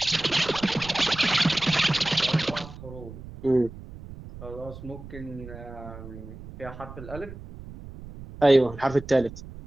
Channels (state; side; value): noise; right; rumble, 14 dB below the sound